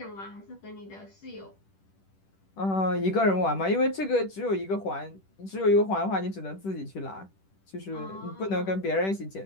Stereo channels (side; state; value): right; late; 10 ms